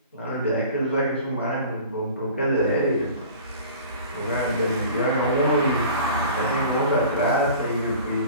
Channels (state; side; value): inverted; both; correlation -0.43